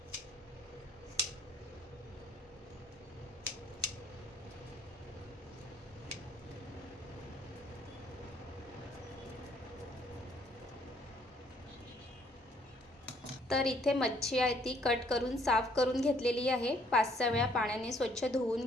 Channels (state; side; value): normal; both; correlation 0.64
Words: तर इथे मच्छी आहे ती कट करून साफ करून घेतलेली आहे, 5-6 वेळा पाण्याने स्वच्छ धुवून